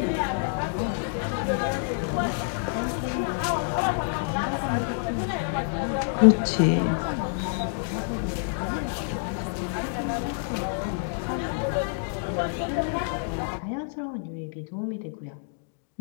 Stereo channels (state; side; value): silent; right; digital silence